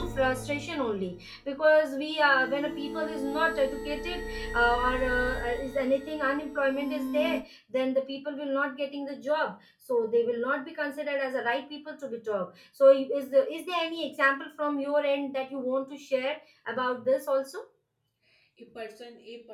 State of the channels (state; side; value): identical; both; correlation 1.00